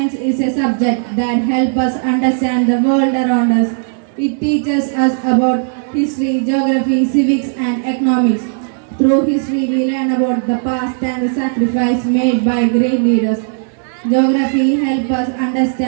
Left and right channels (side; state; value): left; silent; digital silence